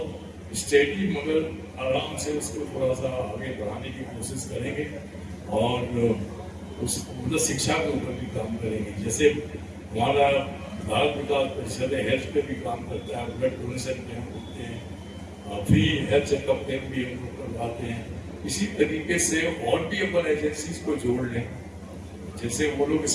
स्टेडी मगर आराम से उसको थोड़ा सा आगे बढ़ाने की कोशिश करेंगे और उस मतलब शिक्षा के ऊपर भी काम करेंगे। जैसे हमारा भारत विकास परिषद हेल्थ पे भी काम करता है, ब्लड डोनेशन कैंप होते हैं, फ्री हेल्थ चेकअप कैंप भी हम लोग करवाते हैं। इसी तरीके से और भी अपन एजेंसीज को जोड़ लें, जैसे वो लोग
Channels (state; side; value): identical; both; correlation 1.00